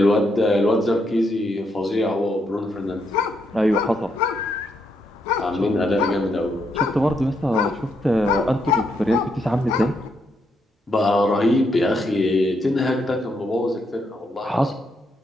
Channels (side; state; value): both; normal; correlation 0.78